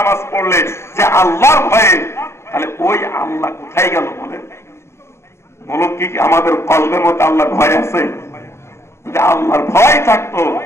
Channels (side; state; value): right; late; 0.13 ms